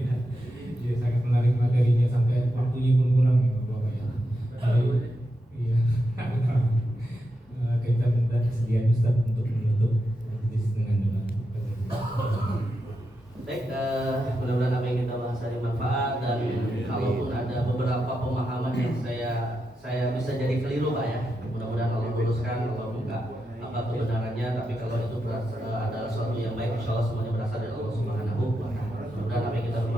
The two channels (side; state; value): both; normal; correlation 0.86